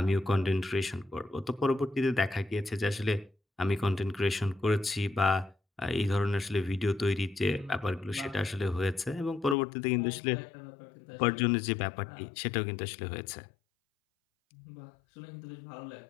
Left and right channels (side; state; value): right; drops out; at 9.6 s